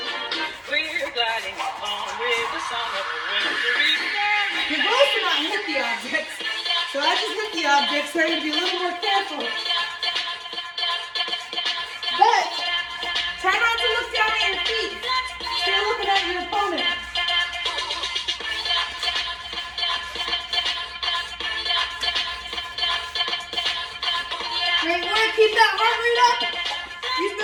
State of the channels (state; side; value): identical; both; correlation 1.00